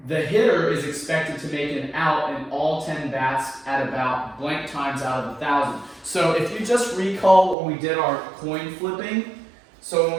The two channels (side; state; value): left; drops out; at 7.6 s